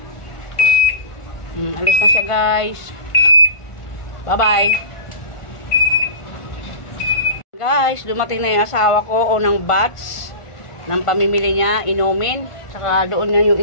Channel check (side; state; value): right; late; 1.5 ms